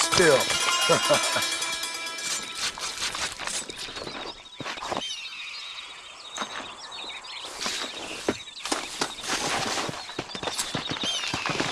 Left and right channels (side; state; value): both; identical; correlation 1.00